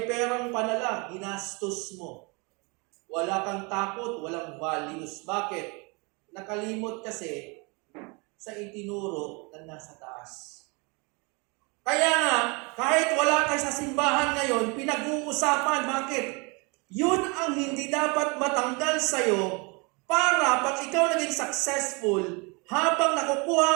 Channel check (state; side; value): quieter; left; 30.0 dB